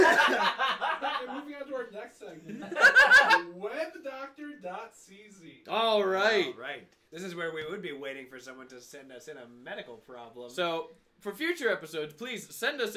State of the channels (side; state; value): both; identical; correlation 1.00